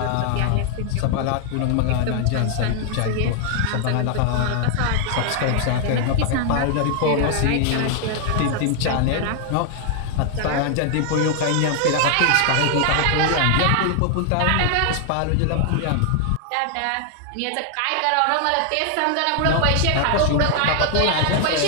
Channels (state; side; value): different; both; correlation 0.00